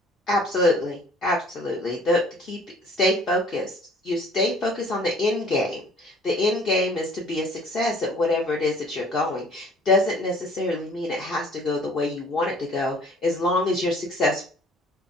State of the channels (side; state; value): both; normal; correlation 0.53